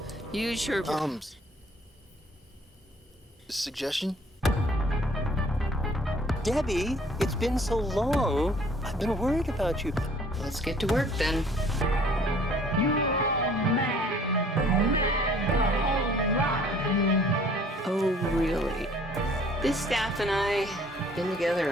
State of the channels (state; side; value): normal; both; correlation 0.56